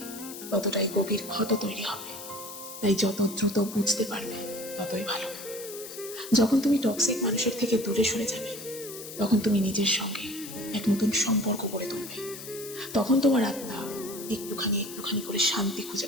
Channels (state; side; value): noise; left; hiss, 12 dB below the sound